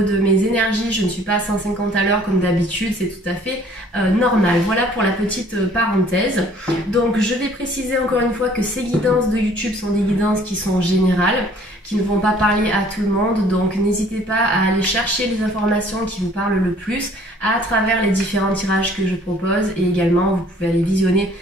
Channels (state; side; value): normal; both; correlation 0.56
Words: mes énergies, je ne suis pas à 150 à l'heure comme d'habitude, c'est tout à fait normal. Voilà pour la petite parenthèse. Donc je vais préciser encore une fois que ces guidances de YouTube sont des guidances qui sont générales, qui ne vont pas parler à tout le monde. Donc n'hésitez pas à aller chercher les informations qui vous parlent le plus à travers les différents tirages que je propose. Et également, vous pouvez aller visionner